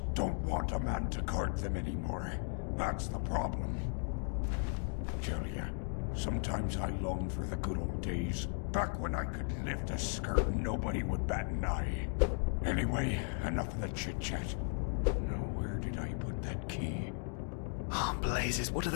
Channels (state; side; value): silent; right; 54 dB below the other